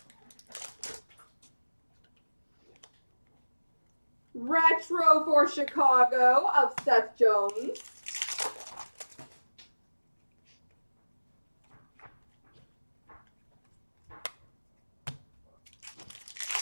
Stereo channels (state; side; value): inverted; both; correlation -1.00